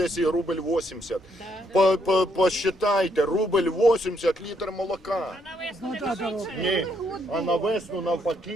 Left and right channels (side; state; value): both; normal; correlation 0.73